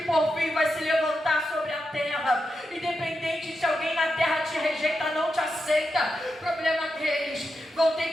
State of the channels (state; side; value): normal; both; correlation 0.87